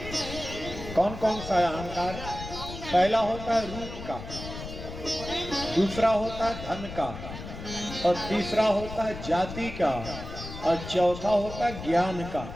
कौन कौन सा अहंकार? पहला होता है रूप का, दूसरा होता है धन का, और तीसरा होता है जाति का, और चौथा होता है ज्ञान का।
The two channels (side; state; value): left; noise; rumble, 10 dB below the sound